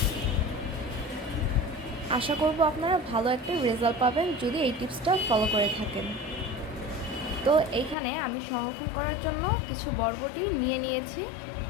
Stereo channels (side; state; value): right; drops out; at 8.0 s